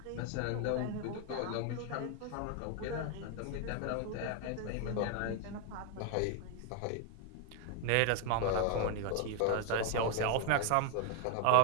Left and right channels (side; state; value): both; different; correlation 0.00